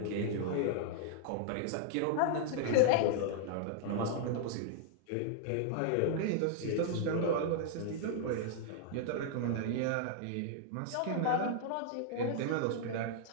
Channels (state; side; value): different; both; correlation -0.01